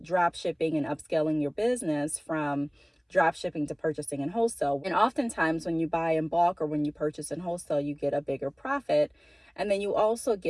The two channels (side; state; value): both; identical; correlation 1.00